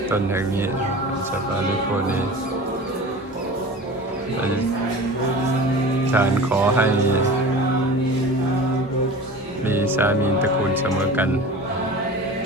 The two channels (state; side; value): normal; both; correlation 0.37